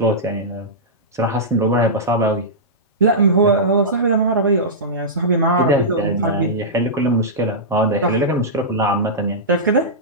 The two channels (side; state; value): both; normal; correlation -0.14